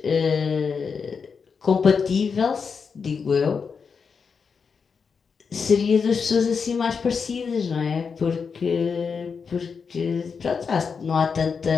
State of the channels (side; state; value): right; quieter; 5.7 dB